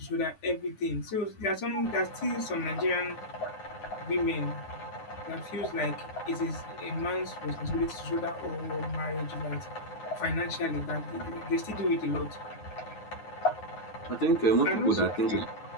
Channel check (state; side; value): late; right; 9.6 ms